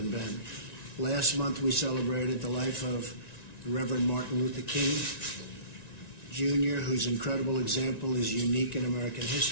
Ben. Last month, we celebrated the life of the Reverend Martin Luther King Jr., whose incredible example is unique in American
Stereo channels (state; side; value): late; right; 1.9 ms